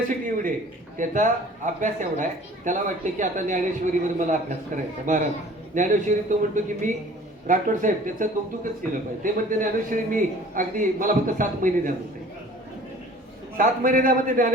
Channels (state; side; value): normal; both; correlation 0.48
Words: एवढी आहे, त्याचा अभ्यास एवढा आहे, त्याला वाटतं की आता ज्ञानेश्वरीवर मला अभ्यास करायचा. महाराज ज्ञानेश्वरी, तो म्हणतो की मी राठोड साहेब त्याचं कौतुकच केलं पाहिजे. ते म्हणते ज्ञानेश्वरी मी अगदी, मला फक्त 7 महिने द्या म्हणते. 7 महिने द्या म्हणते